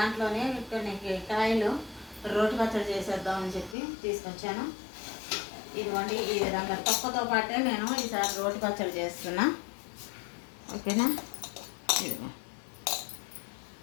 కొన్ని కాయలు రోటి పచ్చడి చేసేద్దామని చెప్పి తీసుకొచ్చాను. ఇదిగోండి, ఈ విధంగా తొక్కతో పాటే నేను ఈసారి రోటి పచ్చడి చేస్తున్నా. ఓకేనా? ఇదిగో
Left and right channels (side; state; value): right; drops out; at 3.8 s